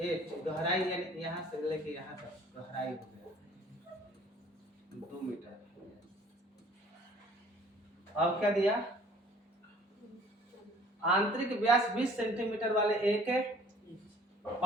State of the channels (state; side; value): normal; both; correlation 0.53